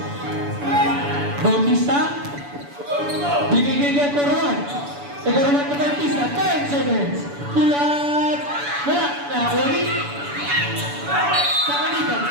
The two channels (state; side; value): late; left; 7.0 ms